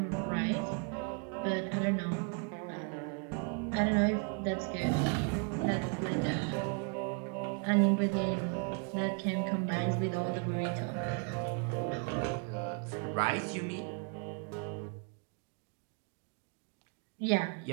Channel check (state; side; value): quieter; left; 35.3 dB